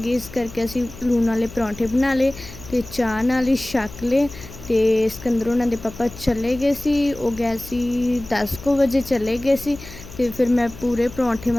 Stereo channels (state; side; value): noise; left; hum, 16 dB below the sound